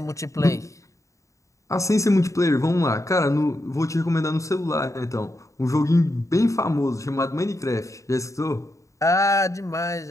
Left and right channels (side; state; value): right; late; 0.15 ms